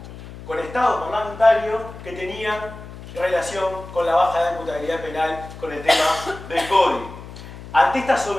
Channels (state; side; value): noise; left; hum, 14 dB below the sound